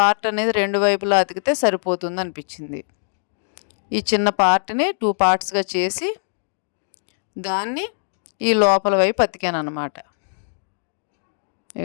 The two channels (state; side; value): silent; right; digital silence